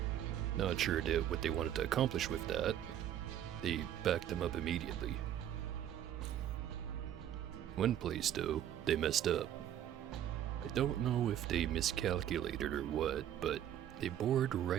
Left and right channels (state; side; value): quieter; left; 10.9 dB